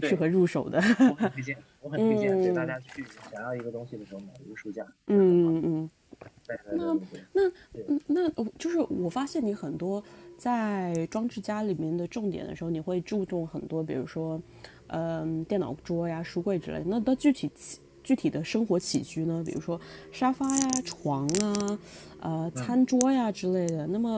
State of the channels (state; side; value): identical; both; correlation 1.00